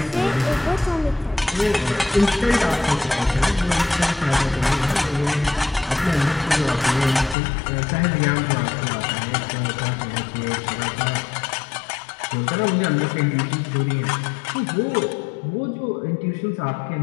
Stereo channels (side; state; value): right; drops out; at 7.4 s